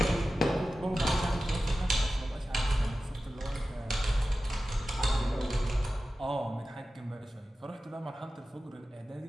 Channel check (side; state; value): both; normal; correlation 0.94